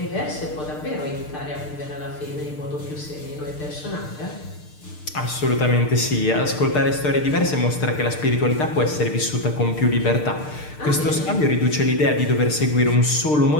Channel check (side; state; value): right; late; 6.6 ms